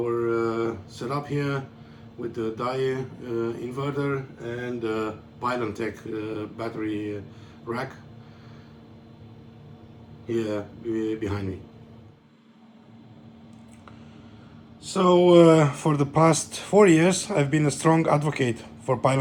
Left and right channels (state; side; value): identical; both; correlation 1.00